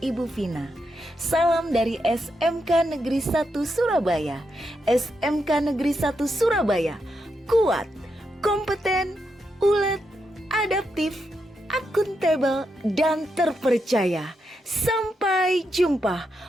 Ibu Vina. Salam dari SMK Negeri 1 Surabaya. SMK Negeri 1 Surabaya, kuat, kompeten, ulet, adaptif, akuntabel, dan terpercaya. Sampai jumpa.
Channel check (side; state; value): both; normal; correlation 0.83